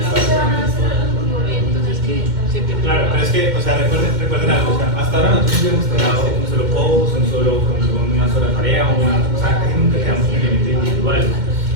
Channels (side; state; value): left; late; 2.1 ms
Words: es que, o sea, recuerden algo, o sea, hasta ahora nosotros hemos trabajado un solo post, una sola tarea, o sea, casi nunca quedamos un elemento individual.